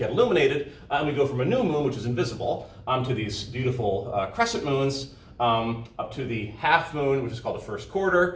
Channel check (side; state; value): both; identical; correlation 1.00